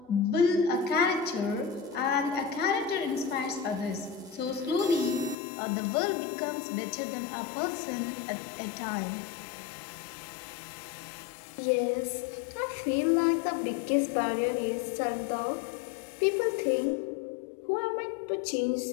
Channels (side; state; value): right; drops out; at 5.4 s